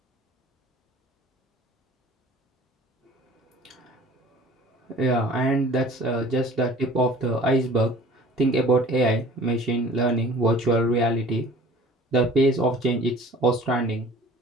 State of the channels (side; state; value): both; normal; correlation 0.46